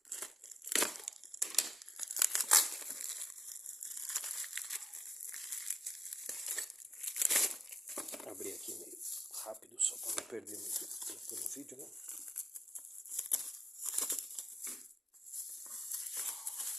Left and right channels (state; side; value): normal; both; correlation 0.82